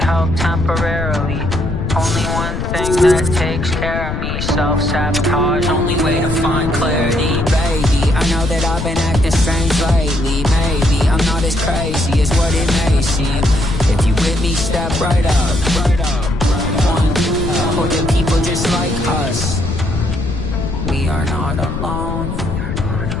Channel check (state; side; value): noise; left; rumble, 4 dB below the sound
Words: help temporarily. Only one thing that takes care of me. Self-sabotage, only way to find clarity. Baby, I know that I've been acting strange lately. Maybe I'm not as crazy as what it may seem. If you with me, step right up. One, or the people just like us. We are not alone.